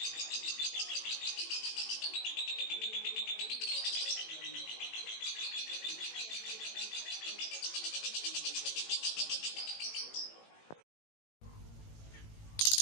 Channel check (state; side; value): late; right; 18 ms